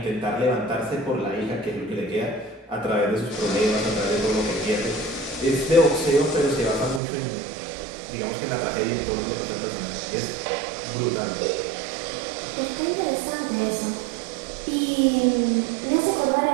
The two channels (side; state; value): left; drops out; at 7.0 s